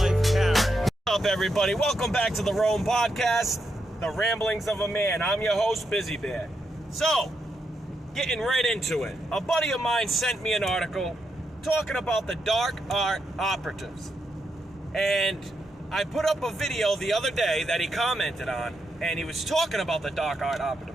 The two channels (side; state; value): both; normal; correlation 0.82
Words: Karen. What's up, everybody? Welcome back to the R.O.A.M Podcast, the ramblings of a man. I'm your host, Bizziebear. So, getting right into it. A buddy of mine sent me an article talking about the dark art operatives. And I put up a video the other day that he commented on, and he was talking about the dark art